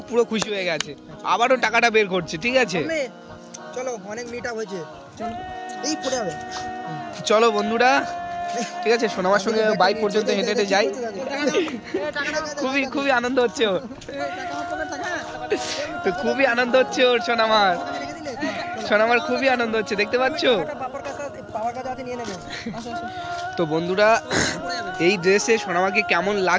পুরো খুশি হয়ে গেছে, আবারও টাকাটা বের করছে, ঠিক আছে। চলো, অনেক মিট আপ হয়েছে, এই পড়ে যাবে। চলো বন্ধুরা, ঠিক আছে, সোনামার সঙ্গে বাইক পর্যন্ত হেঁটে হেঁটে যাই। খুবই খুবই আনন্দ হচ্ছে ওর। তো খুবই আনন্দ হচ্ছে ওর সোনামার, সোনামার খুবই আনন্দ হচ্ছে, দেখতে পাচ্ছ? তো বন্ধুরা এই ড্রেসে সোনামাকে কেমন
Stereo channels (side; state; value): both; identical; correlation 1.00